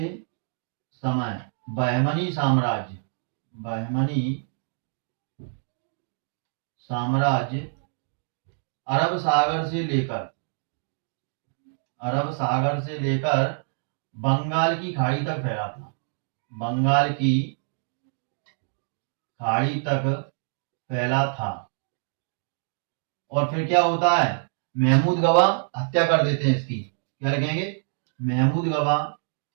समय बहमनी साम्राज्य, बहमनी साम्राज्य अरब सागर से लेकर, अरब सागर से लेकर बंगाल की खाड़ी तक फैला था, बंगाल की खाड़ी तक फैला था। और फिर क्या होता है, महमूद गवा हत्या कर देते हैं इसकी, क्या लिखेंगे महमूद गवा,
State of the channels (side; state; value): left; silent; 61 dB below the other